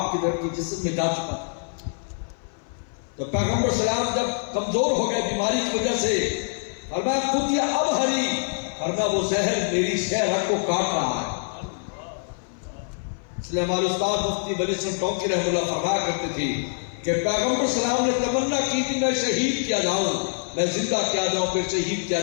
کی طرف کی جسم میں جا چکا تھا. تو پیغمبر اسلام جب کمزور ہو گئے بیماری کی وجہ سے, فرمایا خود یہ اب ہری, فرمایا وہ زہر میری شہرت کو کاٹ رہا ہے. اس لیے ہمارے استاد مفتی ولی حسن ٹونکی رحمۃ اللہ فرمایا کرتے تھے کہ پیغمبر اسلام نے تمنا کی تھی میں شہید کیا جاؤں, میں زندہ کیا جاؤں, پھر شہید کیا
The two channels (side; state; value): right; silent; 57 dB below the other